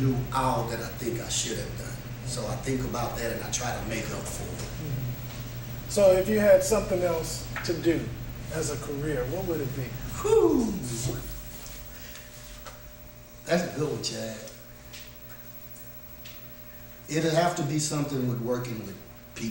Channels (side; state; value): both; identical; correlation 1.00